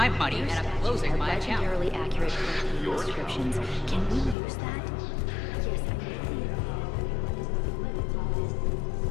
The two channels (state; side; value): drops out; right; at 4.4 s